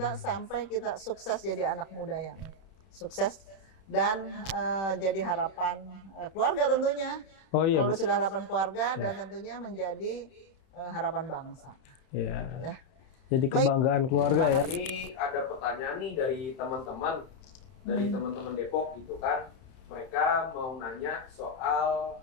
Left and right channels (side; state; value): right; late; 31 ms